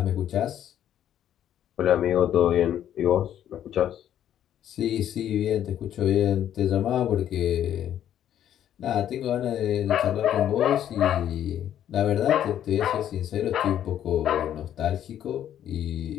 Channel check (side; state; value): right; quieter; 10.7 dB